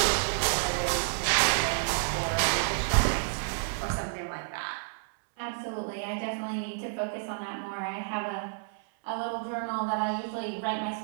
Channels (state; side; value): silent; left; 58 dB below the other